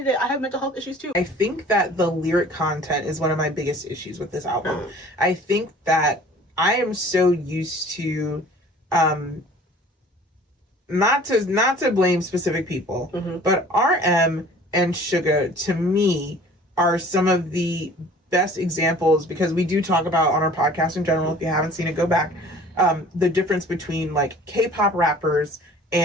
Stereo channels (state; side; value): normal; both; correlation 0.49